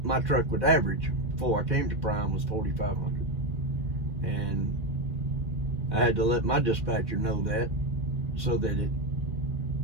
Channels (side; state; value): left; late; 1.6 ms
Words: my truck would average before I came to Prime was 4,500. And I had to let my dispatcher know that so that it